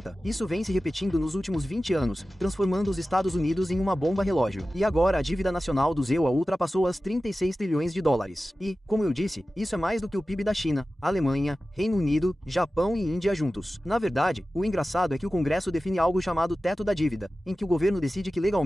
Isso vem se repetindo nos últimos 20 anos, transformando os Estados Unidos em uma bomba relógio. E agora a dívida nacional do ZEUA ultrapassou as 36 trilhões de dólares. E, como eu disse, isso é mais do que o PIB da China, Alemanha, Reino Unido, Japão e Índia juntos. Na verdade, o engraçado é que o Congresso define algo chamado teto da dívida, em que o governo decide que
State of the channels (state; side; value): normal; both; correlation 0.95